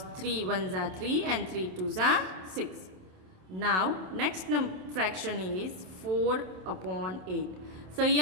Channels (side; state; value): left; late; 27 ms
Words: 3 ones are 3 and 3 twos are 6. Now next fraction is 4 upon 8. So